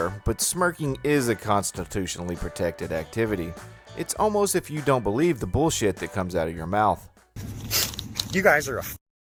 but smirking is a constitutionally protected activity. It's almost if you don't believe the bullshit that comes out of your mouth. You guys are a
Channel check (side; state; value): both; identical; correlation 1.00